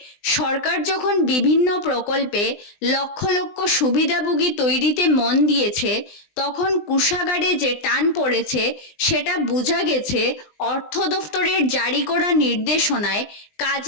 সরকার যখন বিভিন্ন প্রকল্পে লক্ষ লক্ষ সুবিধাভোগী তৈরিতে মন দিয়েছে, তখন কোষাগারে যে টান পড়েছে সেটা বোঝা গেছে অর্থ দফতরের জারি করা নির্দেশনায়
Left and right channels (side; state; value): right; late; 20 ms